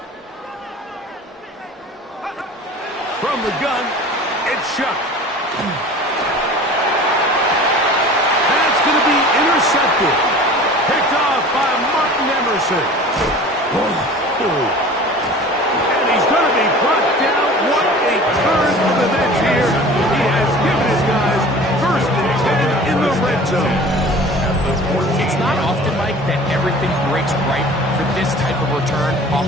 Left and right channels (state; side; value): normal; both; correlation 0.42